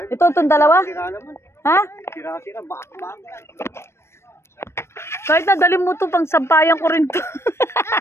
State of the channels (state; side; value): late; right; 0.13 ms